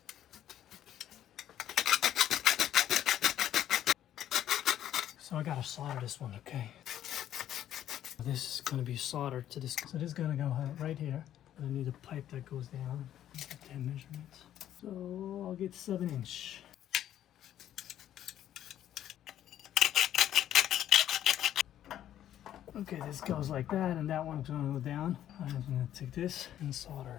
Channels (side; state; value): right; quieter; 11.4 dB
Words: So I gotta solder this one, okay? This is gonna be soldered to this. So this is gonna go right here. I need a pipe that goes down. Get that measurement. So I'll get 7-inch. Okay, this goes like that, and that one's gonna go down. I'm gonna take this and solder